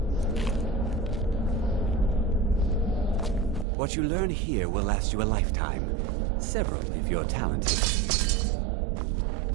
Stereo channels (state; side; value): drops out; left; at 3.7 s